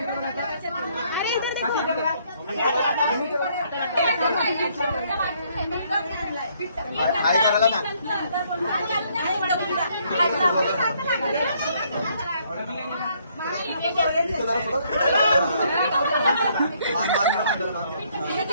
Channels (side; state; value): both; inverted; correlation -0.67